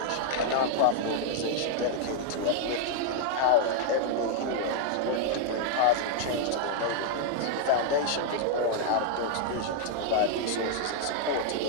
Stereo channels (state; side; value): different; both; correlation 0.00